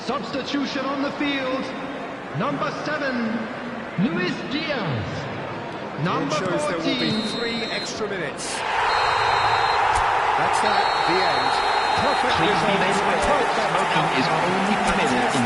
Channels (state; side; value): identical; both; correlation 1.00